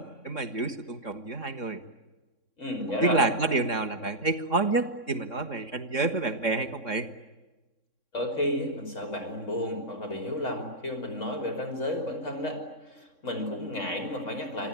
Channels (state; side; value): late; right; 3.6 ms